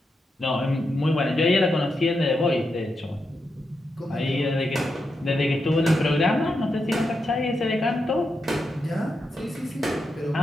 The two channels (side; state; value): both; normal; correlation 0.86